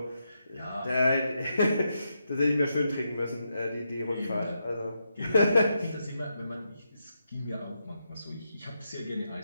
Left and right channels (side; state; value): both; inverted; correlation -0.83